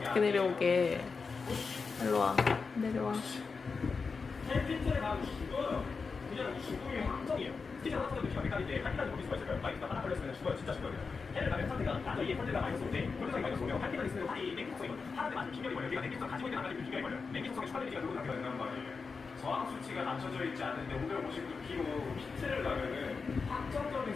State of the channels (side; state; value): right; quieter; 4.8 dB